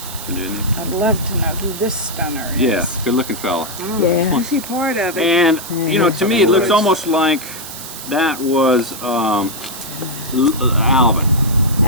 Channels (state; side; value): noise; right; hiss, 11 dB below the sound